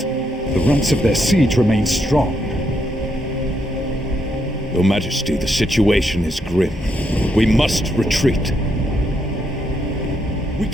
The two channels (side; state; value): both; normal; correlation 0.78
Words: The ranks of their siege remain strong. Your Majesty, the situation is grim. We must retreat. We